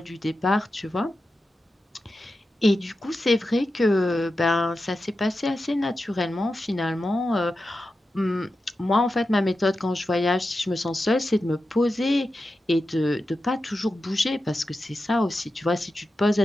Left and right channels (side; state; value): both; normal; correlation 0.91